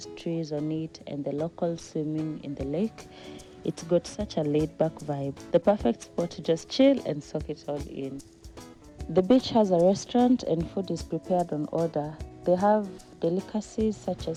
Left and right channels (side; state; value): both; identical; correlation 1.00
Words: trees on it and the locals swimming in the lake. It's got such a laid-back vibe. The perfect spot to just chill and soak it all in. The beach has a restaurant and food is prepared on order. They have delicacies such